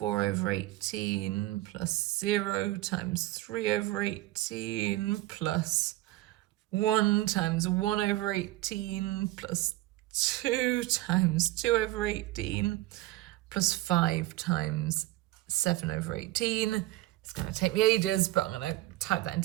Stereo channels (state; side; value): quieter; left; 17.3 dB